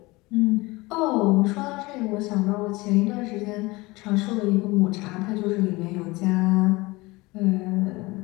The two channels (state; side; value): quieter; right; 22.4 dB